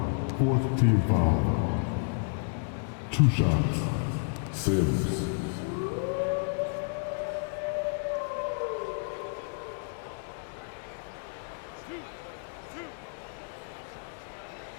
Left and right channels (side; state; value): right; silent; digital silence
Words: Fourth team foul. 2 shots. Sims.